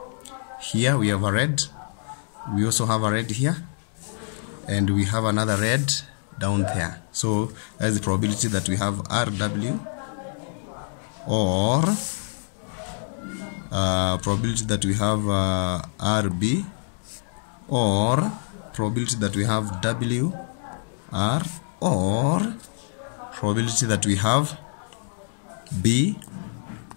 we have a red. We also have a red here, and we have another red down there. So that is the probability that we have RW, or probability that we have RB, or probability that we have WR, or probability that we have BR.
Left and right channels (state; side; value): silent; right; digital silence